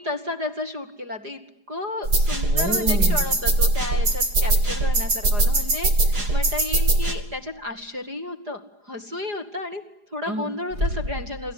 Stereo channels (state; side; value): late; left; 4.9 ms